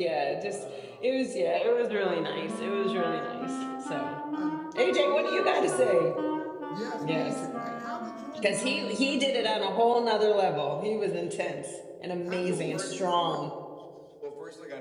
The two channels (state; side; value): identical; both; correlation 1.00